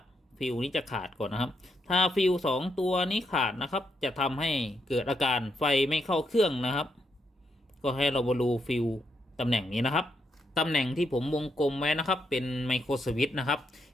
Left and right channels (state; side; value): normal; both; correlation 0.80